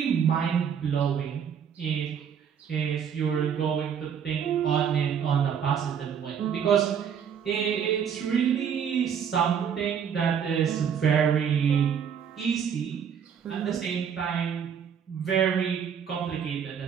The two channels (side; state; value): left; quieter; 7.8 dB